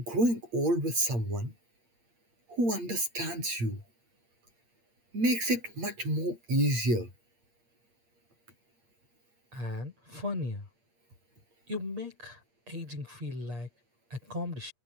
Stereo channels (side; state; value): left; late; 8.5 ms